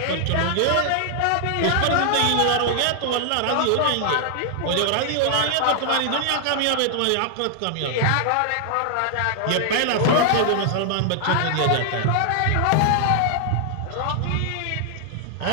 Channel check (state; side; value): different; both; correlation 0.00